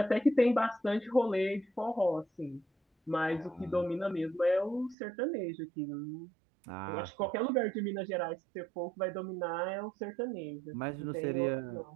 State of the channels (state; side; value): drops out; left; at 5.0 s